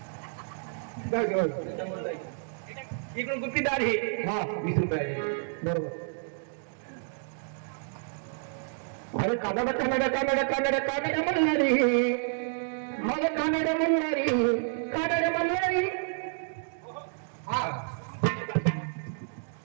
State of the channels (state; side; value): silent; left; digital silence